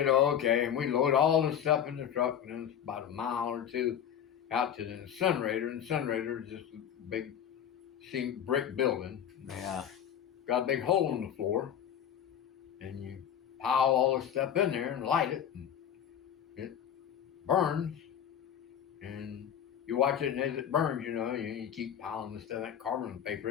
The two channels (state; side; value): quieter; right; 9.2 dB